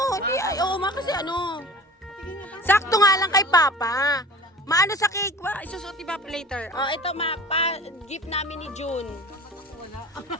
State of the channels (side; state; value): both; normal; correlation 0.40